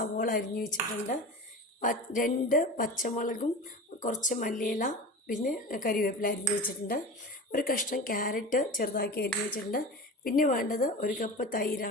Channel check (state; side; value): normal; both; correlation 0.31